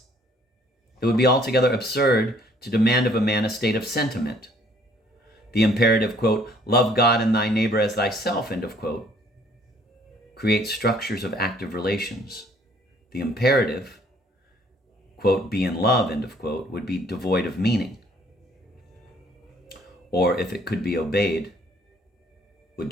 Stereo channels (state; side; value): normal; both; correlation 0.60